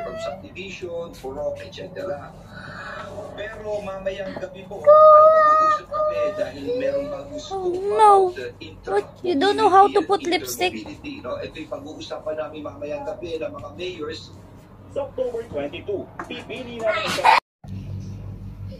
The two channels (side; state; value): both; identical; correlation 1.00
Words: from subdivision, purok, etc. Pero mamayang gabi po, ay mag-uusap kami dahil merong bagong scoop No. about What? You don't know how to put lipstick? interoperability, no? Ito yung pag-uusapan namin mamayang gabi ng mga mayors. sa October 22, pipili na ng isa